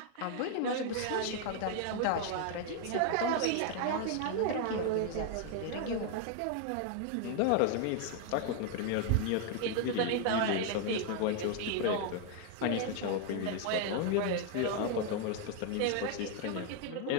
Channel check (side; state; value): both; different; correlation 0.00